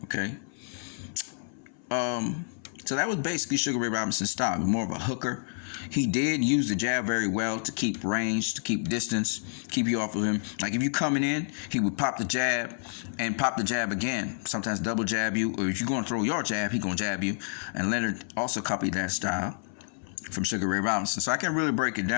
okay? So that was basically Sugar Ray Robinson's style, more of a hooker. He did use the jab very well to keep range, to keep distance, keep you off of him. Like if you coming in, he would pop the jab and pop the jab again. Sometimes double jab you, or if you're going to throw your jab, he going to jab you. And Leonard also copied that style from Sugar Ray Robinson. So I can't really break it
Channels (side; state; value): right; silent; 57 dB below the other